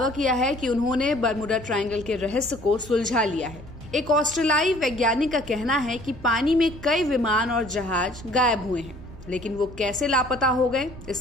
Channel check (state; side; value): normal; both; correlation 0.55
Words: किया है कि उन्होंने बर्मुडा ट्रायंगल के रहस्य को सुलझा लिया है। एक ऑस्ट्रेलियाई वैज्ञानिक का कहना है कि पानी में कई विमान और जहाज गायब हुए हैं, लेकिन वो कैसे लापता हो गए